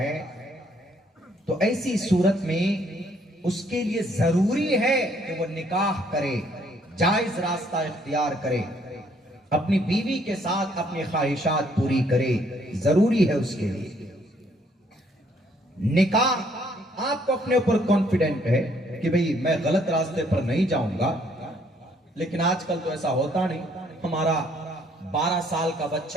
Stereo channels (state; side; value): normal; both; correlation 0.66